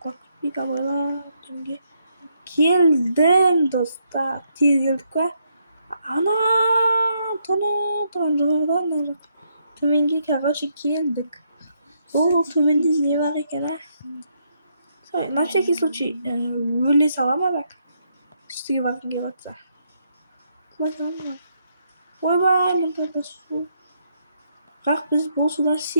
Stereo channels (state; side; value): inverted; both; correlation -0.76